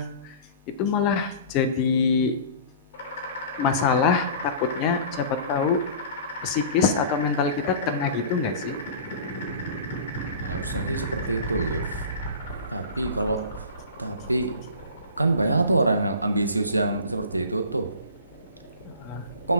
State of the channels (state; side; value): inverted; both; correlation -0.38